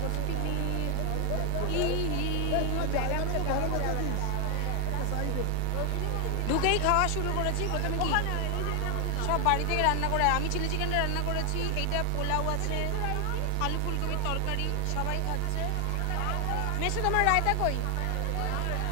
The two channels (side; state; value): both; different; correlation 0.00